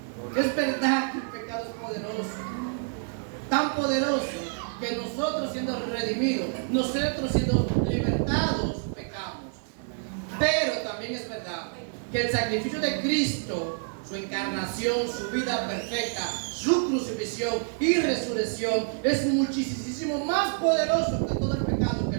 Es verdad que el pecado es poderoso, tan poderoso que nosotros siendo redimidos, nosotros siendo libertados, pecamos. Pero también es verdad que el sacrificio de Cristo, su encarnación, su vida perfecta, su crucifixión y resurrección es muchísimo más poderoso que todo el pecado que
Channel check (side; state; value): left; silent; 60 dB below the other